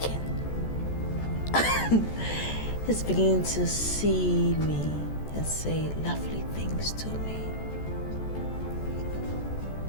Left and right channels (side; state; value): right; late; 14 ms